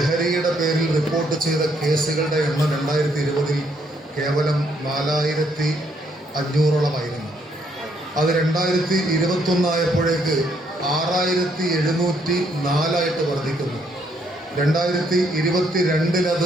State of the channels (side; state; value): both; normal; correlation 0.71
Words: പേരിൽ റിപ്പോർട്ട് ചെയ്ത കേസുകളുടെ എണ്ണം 2020 കേവലം 4500-ഓളമായിരുന്നു. അത് 2021 ആയപ്പോഴേക്ക് 6704 വർദ്ധിക്കുന്നു.